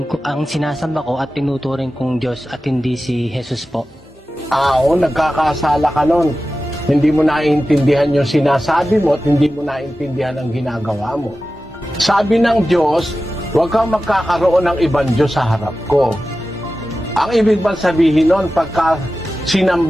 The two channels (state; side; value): normal; both; correlation 0.94